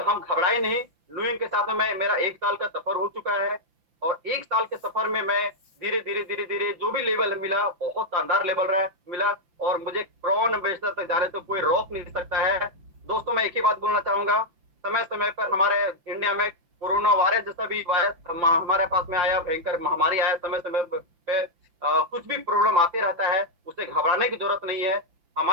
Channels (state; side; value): late; left; 5.8 ms